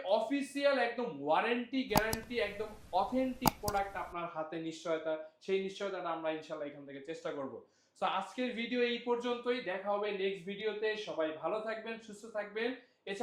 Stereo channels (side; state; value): both; identical; correlation 1.00